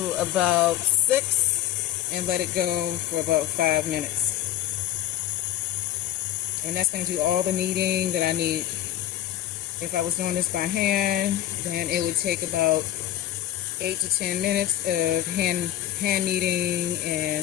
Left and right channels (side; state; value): right; quieter; 12.7 dB